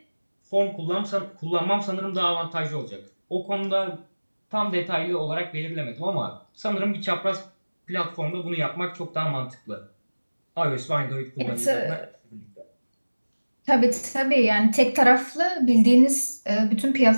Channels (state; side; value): inverted; both; correlation -1.00